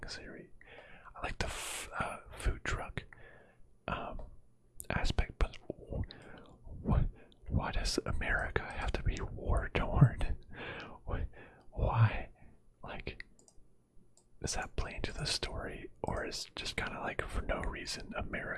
series. I like the food truck aspect, but why does America have to be war-torn? Why? Like, does that play into the story, or is just kind of like for no reason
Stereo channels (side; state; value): both; identical; correlation 1.00